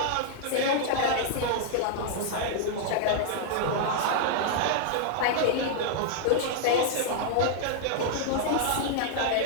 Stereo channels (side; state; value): both; different; correlation -0.01